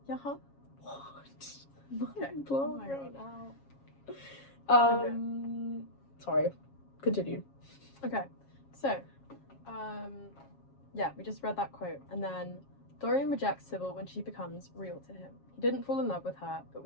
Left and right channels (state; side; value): late; right; 7.3 ms